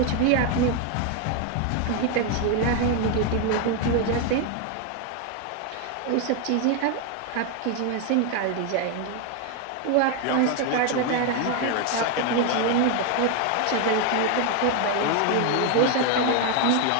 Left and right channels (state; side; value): different; both; correlation 0.01